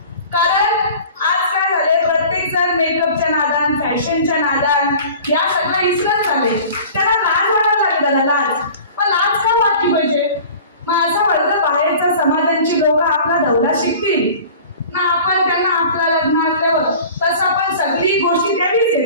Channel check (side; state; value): both; inverted; correlation -0.42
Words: कारण आज काय झाले, प्रत्येक जण मेकअपच्या नादान, फॅशनच्या नादान या सगळं इसरत झाले. त्यांना लाज वाटायला लागली दादा, लाज. पण लाज का वाटली पाहिजे? मग असं वाटतं बाहेरच्या समाजांची लोक आपला धवला शिकतील ना, आपण त्यांना आपल्या लग्नातल्यावर तसं आपण सगळी गोष्टी द्यावीच